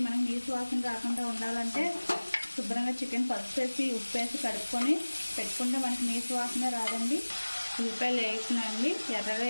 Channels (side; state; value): both; inverted; correlation -1.00